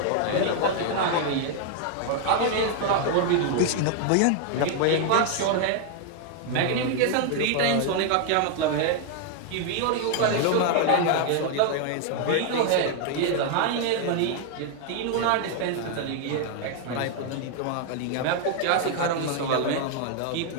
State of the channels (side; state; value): both; different; correlation 0.00